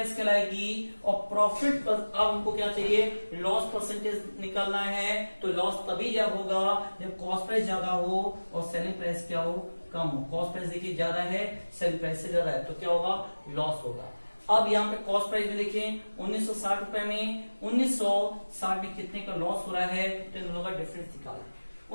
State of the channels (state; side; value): inverted; both; correlation -1.00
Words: कहलाएगी। और प्रॉफिट पर अब हमको क्या चाहिए? लॉस परसेंटेज निकालना है। तो लॉस तभी जब होगा जब कॉस्ट प्राइस ज्यादा हो और सेलिंग प्राइस क्या हो? कम हो। कॉस्ट प्राइस देखिए ज्यादा है, सेलिंग प्राइस से ज्यादा है, तो क्या होगा? लॉस होगा। अब यहाँ पे कॉस्ट प्राइस में देखें 1960 रुपए में 1960 में कितने का लॉस हो रहा है? तो इन दोनों का डिफरेंस निकालें।